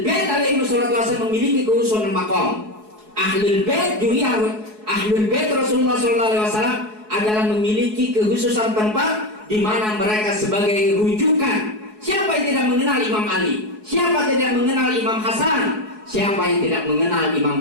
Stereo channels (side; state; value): left; late; 4.7 ms